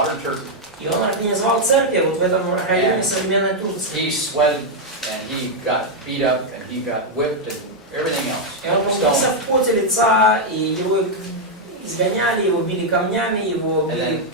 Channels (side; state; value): both; normal; correlation -0.01